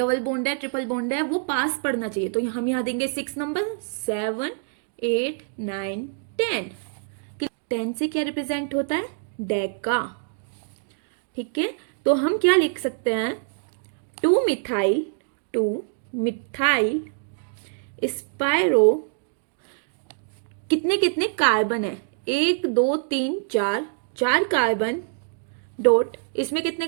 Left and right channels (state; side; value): silent; left; digital silence